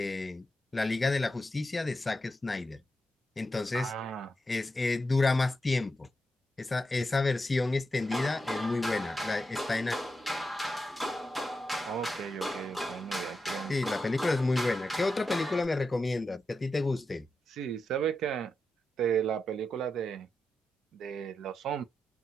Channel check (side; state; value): both; normal; correlation 0.87